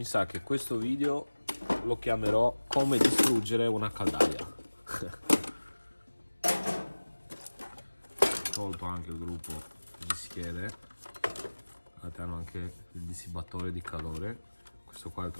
sa che questo video lo chiamerò come distruggere una caldaia. Tolto anche il gruppo di schede, guardate, hanno anche il dissibatore di calore, questo qua è il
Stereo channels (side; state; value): both; inverted; correlation -1.00